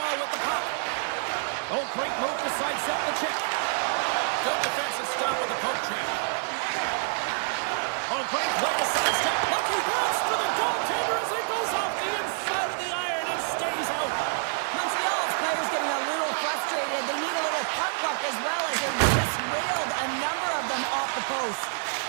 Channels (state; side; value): silent; left; 60 dB below the other